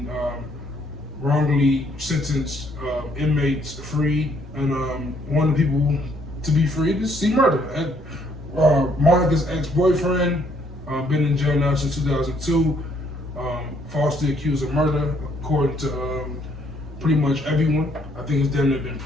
wrongly sentenced inmates freed, and one of the people to be freed is C. Murder. Monica's ex-boyfriend, been in jail now since 2002, falsely accused of murder, according to pretty much everyone. I think it's damn near been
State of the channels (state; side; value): normal; both; correlation 0.67